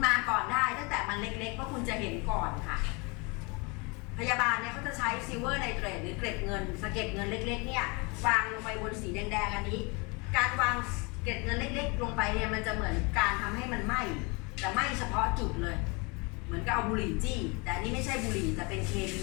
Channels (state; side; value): quieter; right; 29.3 dB